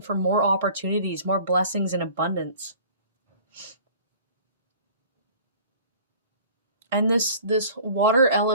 more opportunities, more blessings and abundance. And this water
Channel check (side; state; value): both; inverted; correlation -0.47